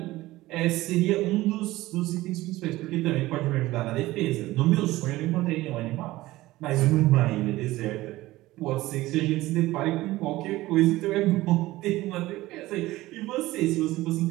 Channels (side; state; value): left; quieter; 17.7 dB